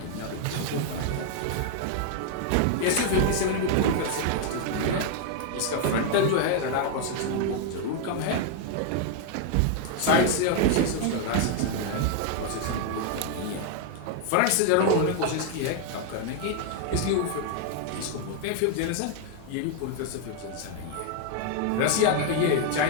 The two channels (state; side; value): different; both; correlation 0.00